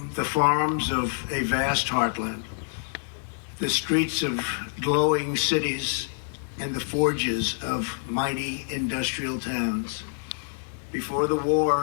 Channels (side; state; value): right; silent; 60 dB below the other